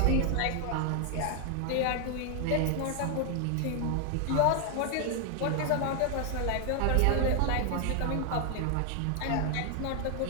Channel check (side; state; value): both; different; correlation 0.00